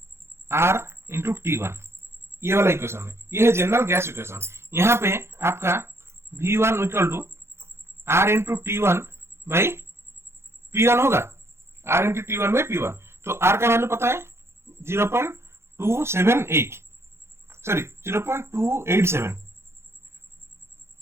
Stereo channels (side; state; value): left; late; 0.12 ms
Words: R into T1, ये वाला इक्वेशन है, ये है जनरल गैस इक्वेशन। यहाँ पे आपका V1 equal to R into T1 by P1 होगा, R into T1 by P1। तो R का वैल्यू पता है 0.287, सॉरी 0.287